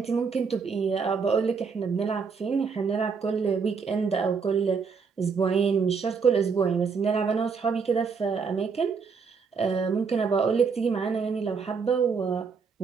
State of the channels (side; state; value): left; quieter; 5.5 dB